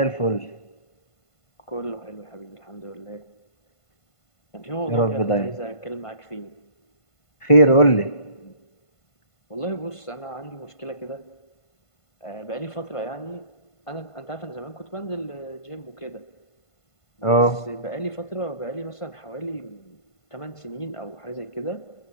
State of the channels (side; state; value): right; late; 1.5 ms